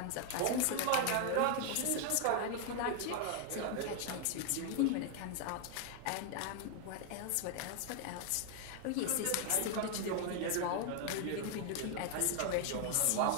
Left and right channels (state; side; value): different; both; correlation 0.00